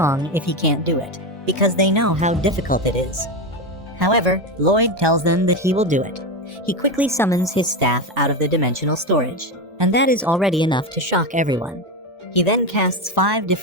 if he can't do it, because they know how difficult it is. However, Lloyd tells them that he will do it. He quickly summons his staff out of the dimensional storage, and that is already enough to shock everyone. He then casts 5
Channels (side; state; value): both; normal; correlation 0.15